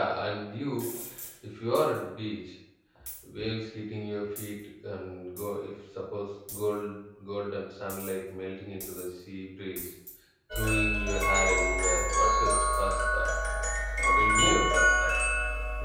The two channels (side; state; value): both; identical; correlation 1.00